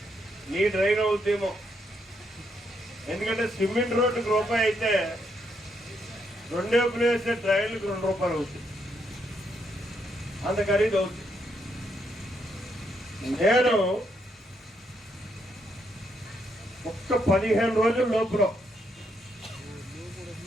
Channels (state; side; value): normal; both; correlation 0.77